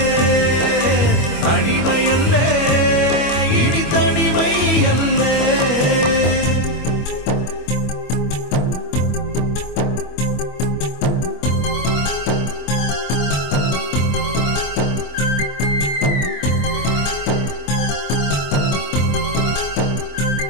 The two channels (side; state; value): right; late; 25 ms